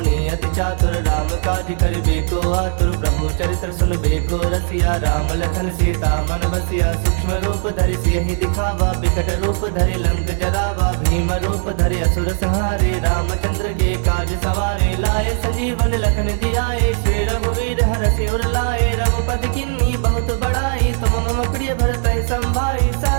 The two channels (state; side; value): silent; left; 67 dB below the other